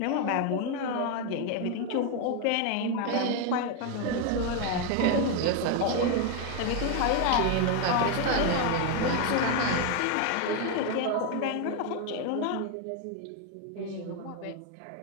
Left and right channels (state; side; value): different; both; correlation 0.01